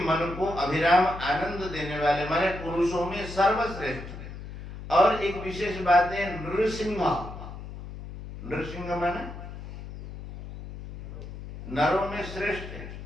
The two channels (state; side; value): noise; left; hum, 11 dB below the sound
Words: को अभिराम आनंद देने वाले, माने पुरुषों में सर्वश्रेष्ठ। और एक विशेष बात है नृसिंह, नृसिंह माने नरों में श्रेष्ठ है।